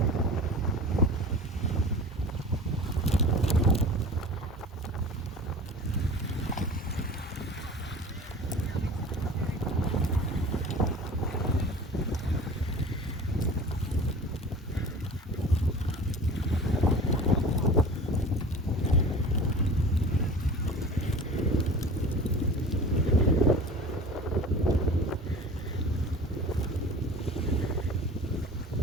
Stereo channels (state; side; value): normal; both; correlation 0.39